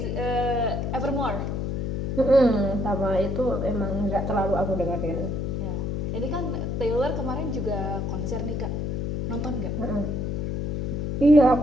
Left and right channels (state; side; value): noise; left; hum, 1 dB below the sound